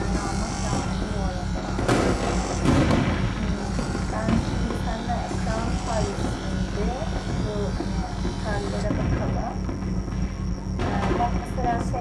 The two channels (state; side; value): identical; both; correlation 1.00